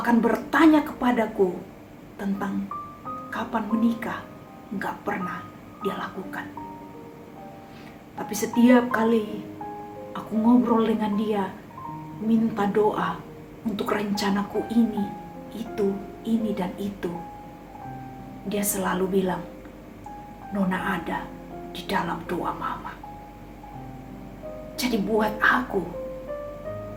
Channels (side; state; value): both; identical; correlation 1.00